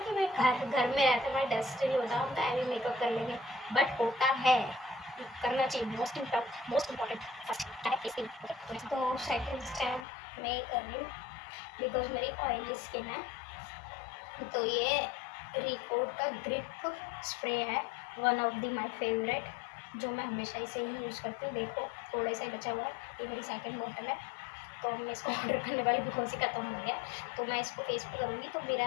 मैं घर घर में रहते मैं डस्ट नहीं होता, हम टाइम भी मेकअप कर लेंगे, बट होता है, करना चाहिए। मोस्ट इम्पॉर्टेंट फर्स्ट है फेस क्रीम। तो सेकंड स्टेप मैं कर रही हूँ बिकॉज मेरी ऑयली स्किन है, तो ये रिकोड का ग्रिप स्प्रे है, one of the my favourite, जो मैं हमेशा इसे ही यूज़ करती हूँ। देखो थोड़ा सा ही बचा हुआ है, ये मेरी सेकंड बॉटल है, तो मैं इसको ऑर्डर करने वाली बिकॉज ही ख़त्म हो गया। तो मैं इसको फेस पे करूँगी तो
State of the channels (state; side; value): drops out; right; at 10.1 s